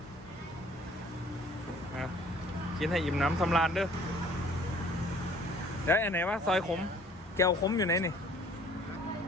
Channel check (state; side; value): normal; both; correlation 0.55